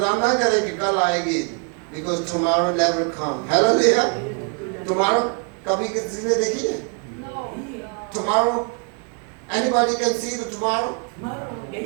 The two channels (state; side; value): quieter; left; 38.8 dB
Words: ना करें कि कल आएगी, because tomorrow never come. Hallelujah. Tomorrow कभी किसी ने देखी है? Tomorrow, anybody can see the tomorrow?